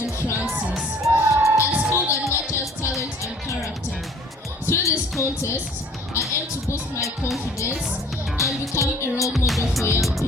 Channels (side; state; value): both; normal; correlation 0.53